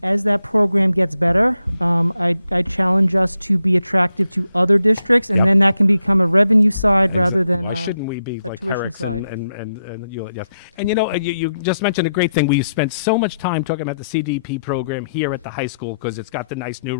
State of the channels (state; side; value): inverted; both; correlation -0.82